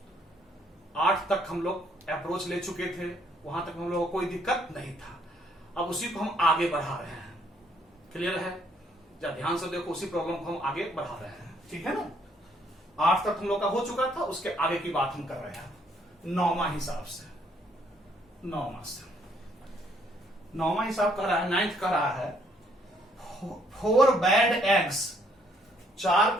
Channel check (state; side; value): normal; both; correlation 0.67